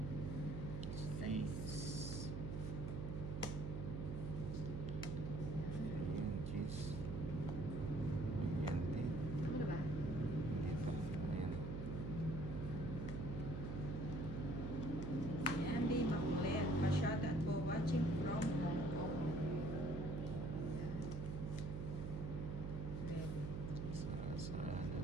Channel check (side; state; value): right; noise; hum, 3 dB below the sound